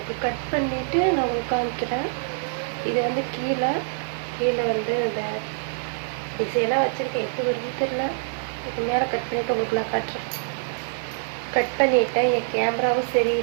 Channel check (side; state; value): left; silent; digital silence